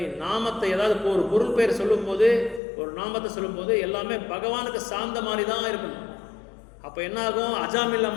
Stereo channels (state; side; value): drops out; right; at 2.6 s